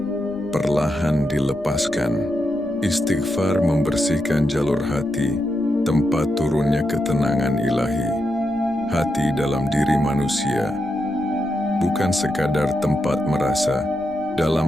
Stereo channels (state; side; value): noise; left; rumble, 25 dB below the sound